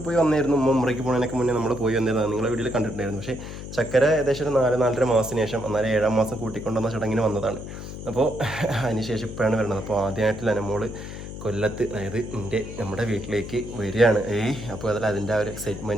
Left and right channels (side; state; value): left; noise; hum, 10 dB below the sound